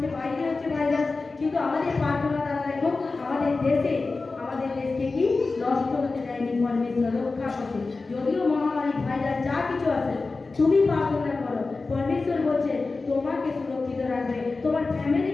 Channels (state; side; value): quieter; right; 3.8 dB